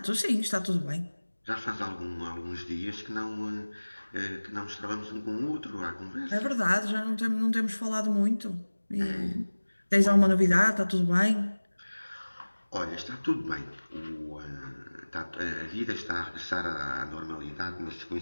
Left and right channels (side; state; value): both; inverted; correlation -1.00